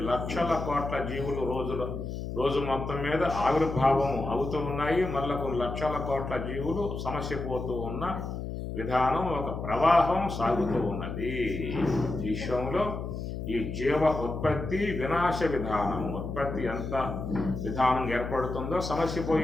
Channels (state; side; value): noise; left; hum, 6 dB below the sound